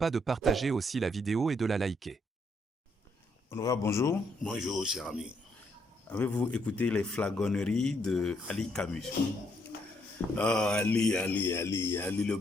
de partager aussi la vidéo et de la liker. Honorable, bonjour. Bonjour, cher ami. Avez-vous écouté les flagonneries de Ali Camus? Oh, Ali le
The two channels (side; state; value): both; normal; correlation 0.73